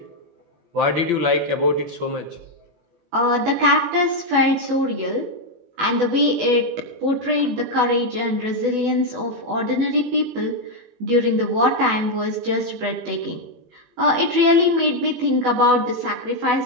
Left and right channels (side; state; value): left; late; 18 ms